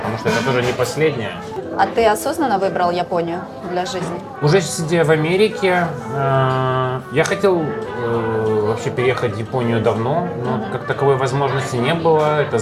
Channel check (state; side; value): identical; both; correlation 1.00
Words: что это тоже не последнее. а ты осознанно выбрал Японию для жизни? Уже сидя в Америке, я хотел вообще переехать в Японию давно, но как таковой возможности не было, это